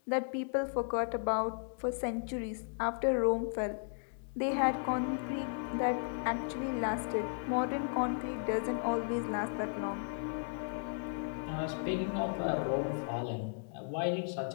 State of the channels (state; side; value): silent; right; digital silence